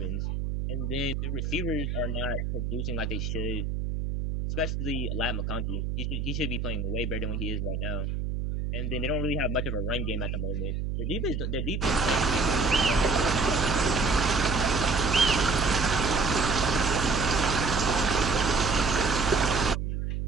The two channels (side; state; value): right; noise; hum, 2 dB below the sound